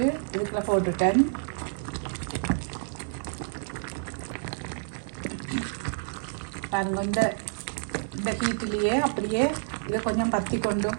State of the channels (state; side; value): silent; left; 59 dB below the other